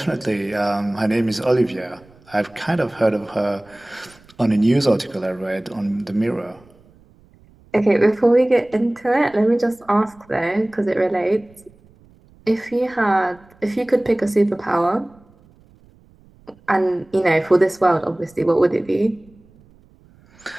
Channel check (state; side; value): noise; right; rumble, 28 dB below the sound